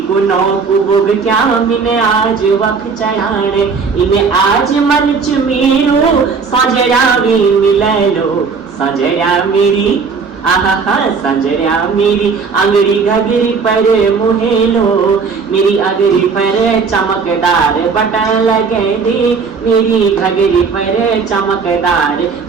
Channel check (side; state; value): left; quieter; 5.1 dB